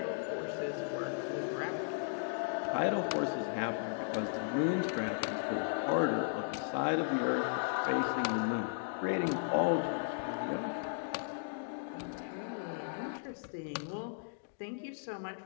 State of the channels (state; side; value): silent; right; digital silence